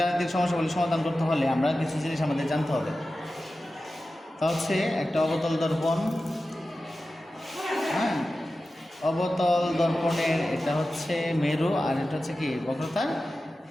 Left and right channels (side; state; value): both; normal; correlation 0.94